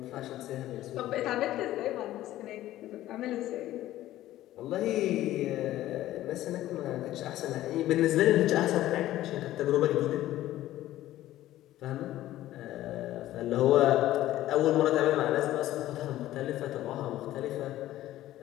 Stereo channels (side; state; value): right; quieter; 14.5 dB